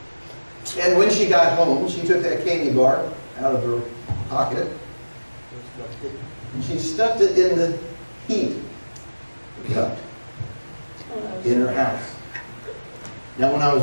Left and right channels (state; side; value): inverted; both; correlation -1.00